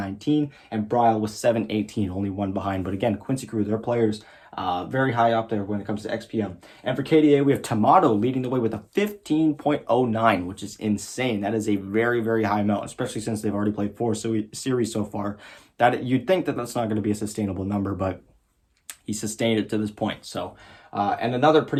and Bryle with 718, only one behind. But again, Quincy Crew, their players very high up there when it comes to XPM. And for KDA, we have Tomato leading the way with a 15.09, which is insane. That is a very, very high amount, especially since they've already played 4 series so far. That you'd think that that's not going to be a sustainable number, but he sustained it to this point. So, and another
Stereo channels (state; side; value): identical; both; correlation 1.00